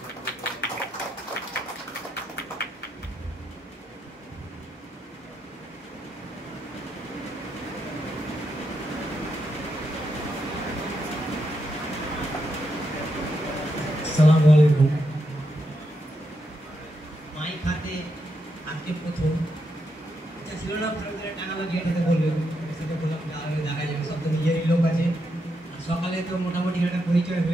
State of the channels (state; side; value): normal; both; correlation 0.82